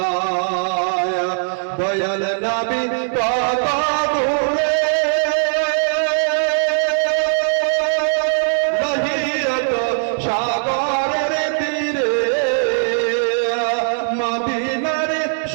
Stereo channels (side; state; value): left; silent; 63 dB below the other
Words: দয়াল নবী কত দূরে মহিয়ত সাগরের তীরে মদিনার